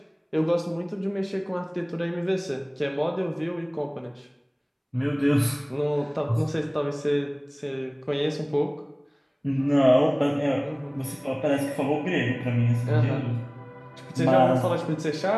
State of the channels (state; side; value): identical; both; correlation 1.00